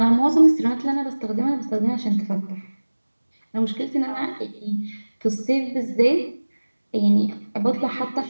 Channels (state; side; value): inverted; both; correlation -1.00